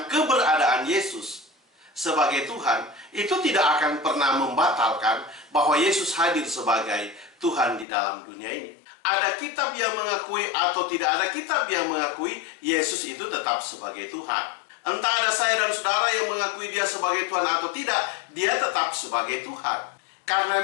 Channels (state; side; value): drops out; right; at 7.9 s